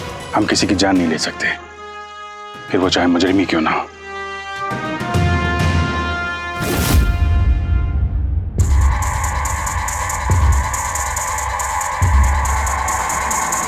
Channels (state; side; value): identical; both; correlation 1.00